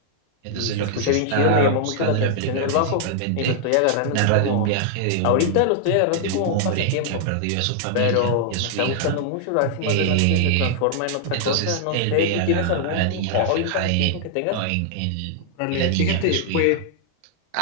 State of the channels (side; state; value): both; different; correlation -0.01